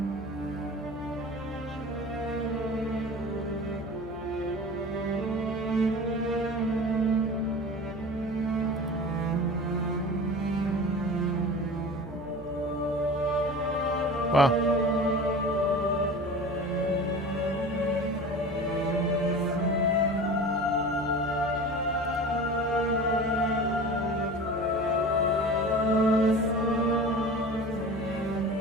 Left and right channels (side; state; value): left; noise; hum, 15 dB below the sound